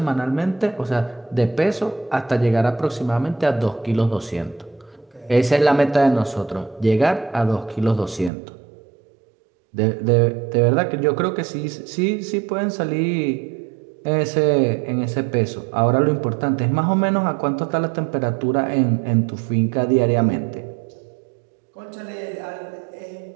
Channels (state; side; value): drops out; left; at 8.3 s